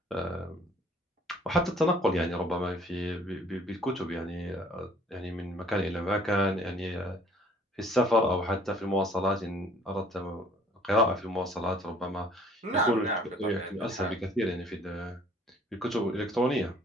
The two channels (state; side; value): normal; both; correlation 0.56